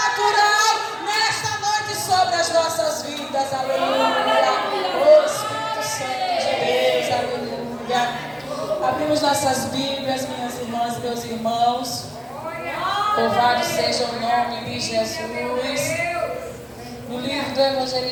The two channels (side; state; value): both; identical; correlation 1.00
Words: nesta noite sobre as nossas vidas. Aleluia. Oh, Espírito Santo de Deus, aleluia. Abrimos nossas Bíblias, minhas irmãs e meus irmãos. Louvado seja o nome de Jesus. No livro do